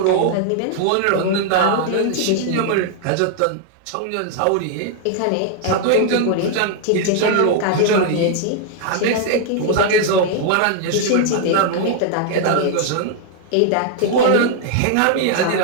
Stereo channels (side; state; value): both; different; correlation 0.00